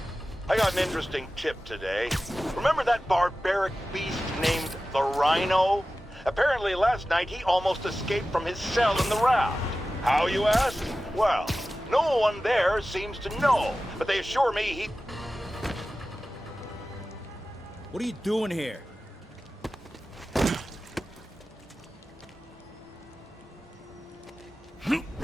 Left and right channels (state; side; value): normal; both; correlation 0.95